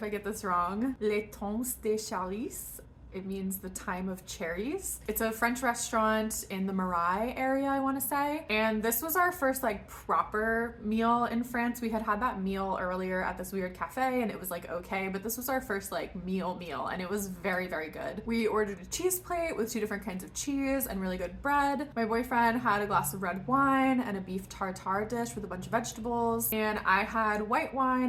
I get this wrong, Les Temps des Cherries. It means the time of cherries. It's a French restaurant in the Marais area, I want to say. And this was our first like proper meal in France. We had had that meal earlier at this weird cafe and it was like okay, but this was our first like meal and it was very, very good. We ordered a cheese plate with 2 different kinds of cheese and really good bread. My boyfriend had a glass of red wine and a beef tartare dish with a bunch of vegetables. And I had white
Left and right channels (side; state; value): both; identical; correlation 1.00